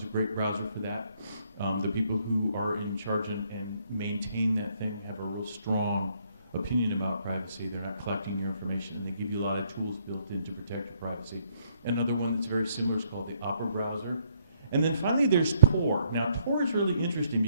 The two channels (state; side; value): inverted; both; correlation -0.69